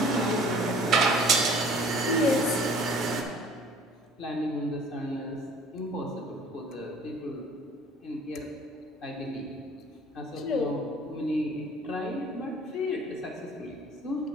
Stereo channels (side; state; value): both; normal; correlation 0.50